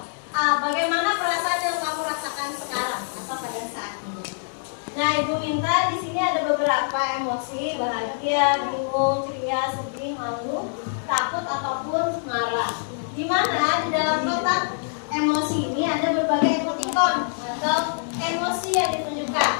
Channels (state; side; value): silent; right; digital silence